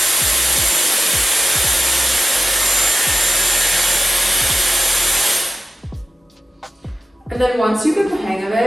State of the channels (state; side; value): normal; both; correlation 0.94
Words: And then once you get the hang of